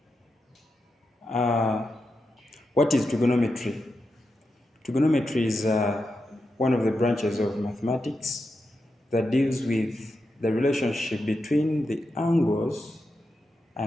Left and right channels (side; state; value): both; normal; correlation 0.88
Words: What is trigonometry? Trigonometry is one of the branches of mathematics that deals with the relationship between the angles